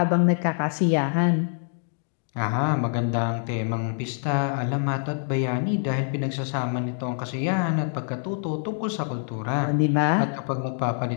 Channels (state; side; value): silent; right; digital silence